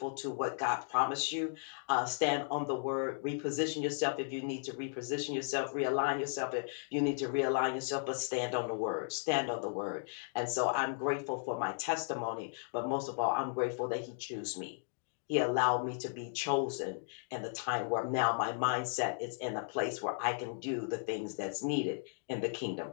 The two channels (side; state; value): right; silent; digital silence